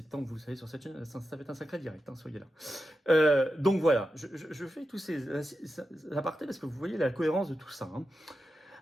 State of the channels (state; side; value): normal; both; correlation 0.90